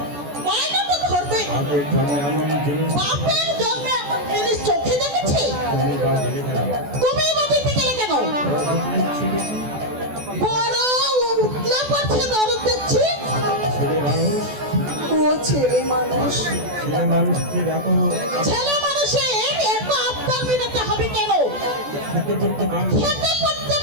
বায়না তো ধরবে, বাপের জন্মে এমন জিনিস চোখে দেখেছে? তুমি বা দিতে গেলে কেন? বড় উঠলে পড়ছে দরদ দেখছি। ও ছেলে মানুষ, ছেলে মানুষের এত আবদার মেটাতে হবে কেন? খেতে পড়তে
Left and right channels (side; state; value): left; late; 14 ms